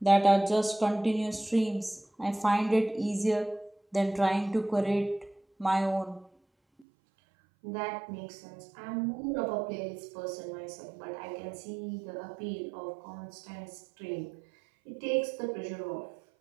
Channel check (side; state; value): left; drops out; at 6.9 s